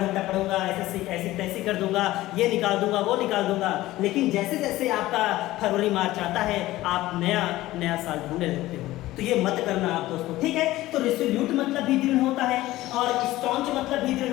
पढ़ूंगा, ऐसे तैसे कर दूंगा, ये निकाल दूंगा, वो निकाल दूंगा। लेकिन जैसे जैसे आपका फरवरी मार्च आता है, आप नया नया साल ढूंढने लगते हो। तो ये मत करना आप दोस्तों, ठीक है। तो रेजोल्यूट मतलब भी दृढ़ होता है और स्टॉन्च मतलब भी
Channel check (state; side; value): quieter; right; 16.7 dB